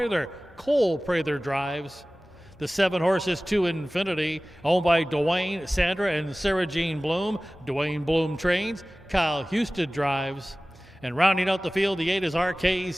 Cole Prather drives. The 7 horses to Infinity, owned by Dwayne, Sandra, and Sarah Jean Bloom. Dwayne Bloom trains. Kyle Houston drives. And rounding out the field, the 8 is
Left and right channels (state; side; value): normal; both; correlation 0.98